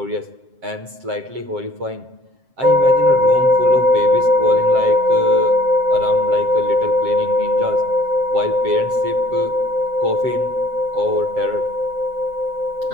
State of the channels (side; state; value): left; late; 7.6 ms